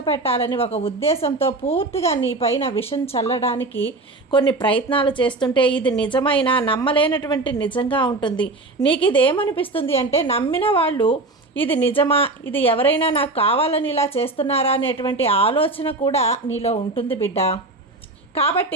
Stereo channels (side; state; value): left; quieter; 3.1 dB